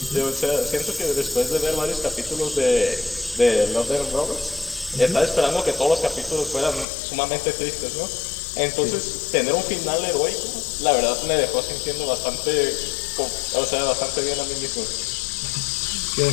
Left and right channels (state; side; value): drops out; right; at 6.9 s